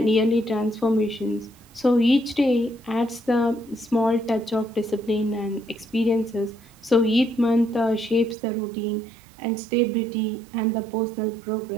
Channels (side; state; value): left; drops out; at 8.3 s